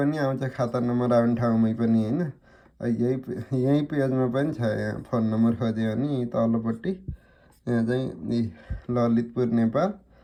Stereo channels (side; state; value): both; identical; correlation 1.00